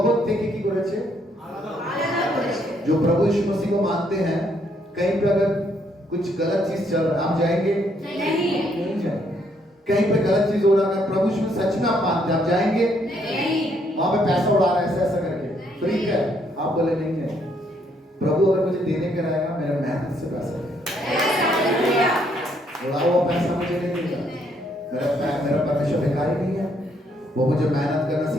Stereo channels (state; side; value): normal; both; correlation 0.71